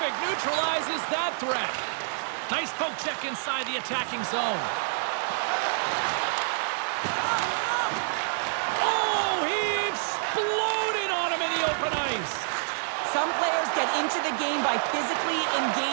neutralizes that threat. Nice poke check inside the attacking zone. Oh, he exploded on him in the open ice. Some players get into the game by physically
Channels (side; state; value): left; silent; digital silence